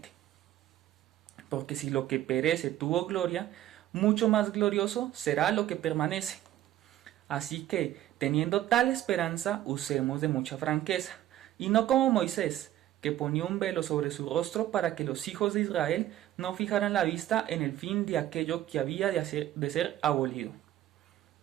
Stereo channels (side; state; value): left; quieter; 13.3 dB